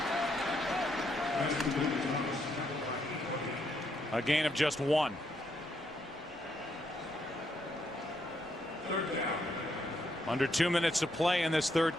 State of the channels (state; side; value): noise; right; rumble, 29 dB below the sound